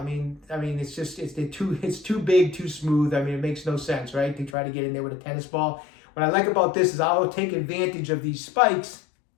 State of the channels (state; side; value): drops out; right; at 4.5 s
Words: mean, it's too big, too smooth. I mean, it makes no sense, right? To try to get in there with a tennis ball. What I like about this is I'll take advantage of these spikes,